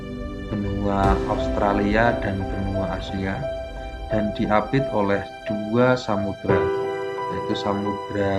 Australia dan benua Asia, dan diapit oleh dua samudra, yaitu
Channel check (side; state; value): both; identical; correlation 1.00